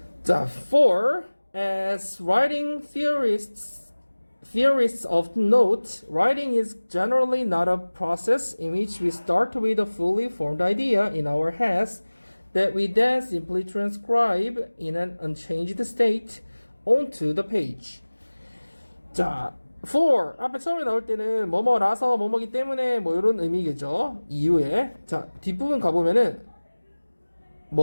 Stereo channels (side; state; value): both; inverted; correlation -1.00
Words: 자, for as writing theorists often note, writing is generally not a process in which we start with a fully formed idea in our heads that we then simply transcribe in an unchanged state onto the page. 자, for 앞에 처음에 나올 때는 뭐뭐라서 뭐뭐기 때문에 뭐 이런 의미겠죠. 이유에. 자, 뒷부분 가보면은